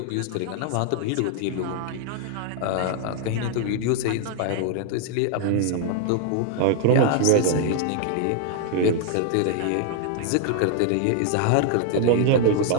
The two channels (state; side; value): different; both; correlation 0.00